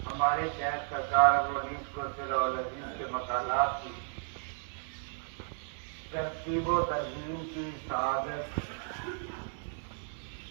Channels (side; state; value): left; silent; 55 dB below the other